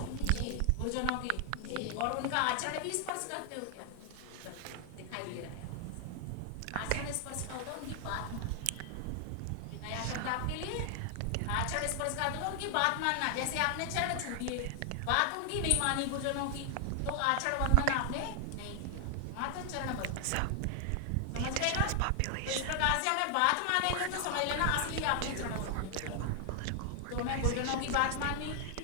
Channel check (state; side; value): different; both; correlation 0.00